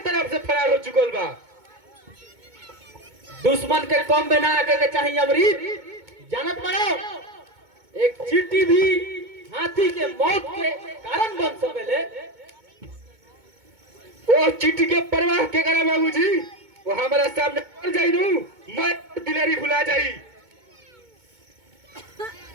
से फरार हो चुकल बा। दुश्मन के कम में ना आके के चाहिए अमरीत, जानत पड़ो एक चींटी भी हाथी के मौत के कारण बन सकेले। और चिट्ठी के परवाह के करे बाबूजी, वो हमारा सामने पड़ जाई लू, मैं दिलेरी भुला जाई।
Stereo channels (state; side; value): late; left; 2.2 ms